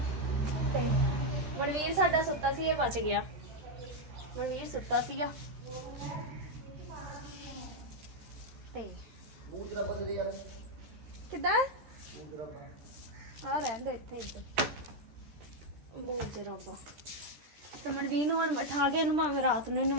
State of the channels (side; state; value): left; late; 13 ms